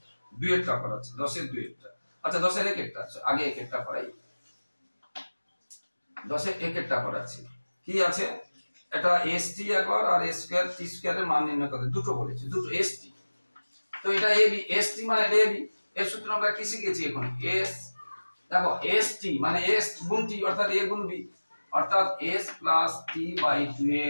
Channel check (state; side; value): inverted; both; correlation -1.00